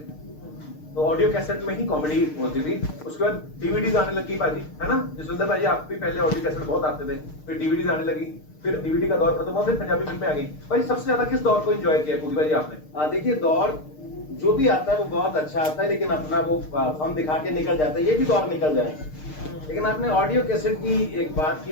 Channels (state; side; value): late; right; 6.6 ms